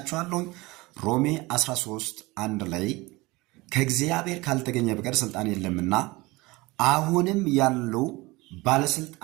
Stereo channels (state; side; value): quieter; left; 22.2 dB